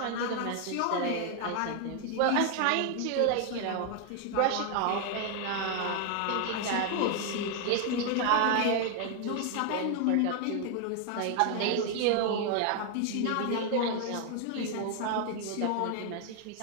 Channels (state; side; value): different; both; correlation 0.00